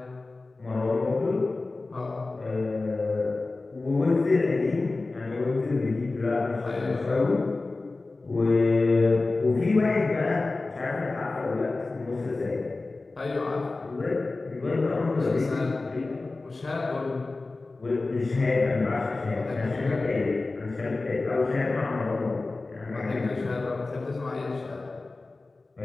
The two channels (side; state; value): right; quieter; 3.4 dB